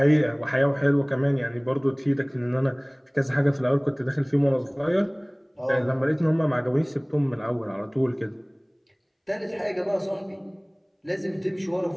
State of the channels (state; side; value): identical; both; correlation 1.00